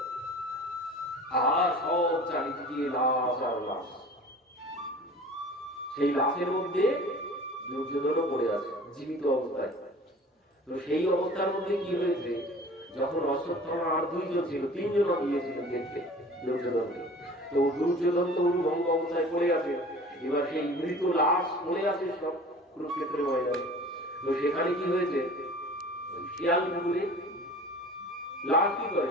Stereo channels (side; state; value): both; normal; correlation 0.43